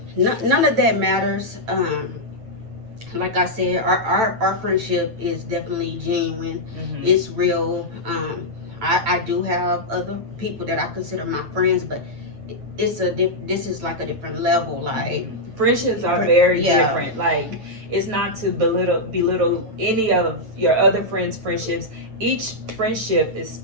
none of that matters. Like I said, our friendship is definitely genuine. It's real. I do have other people that I consider my friends, but this is like a different level. Like, friendships are very different. Like, it's not to belittle any of your other friends' friendships. Each friendship is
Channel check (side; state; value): left; late; 8.9 ms